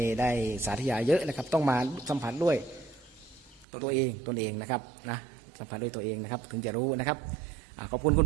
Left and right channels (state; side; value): drops out; left; at 3.7 s